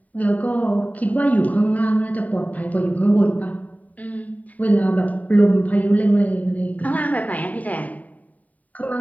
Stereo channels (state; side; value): late; right; 0.072 ms